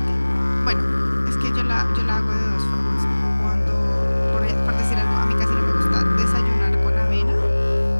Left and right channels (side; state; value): both; inverted; correlation -1.00